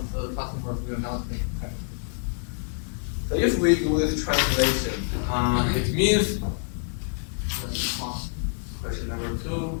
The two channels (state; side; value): silent; right; digital silence